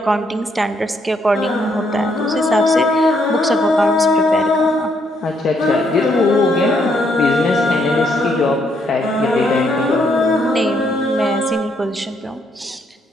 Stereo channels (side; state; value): both; normal; correlation 0.73